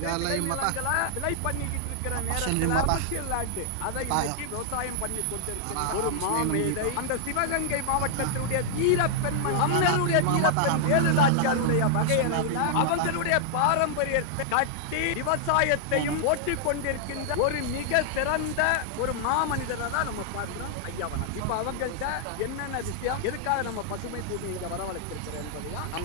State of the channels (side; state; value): both; different; correlation -0.01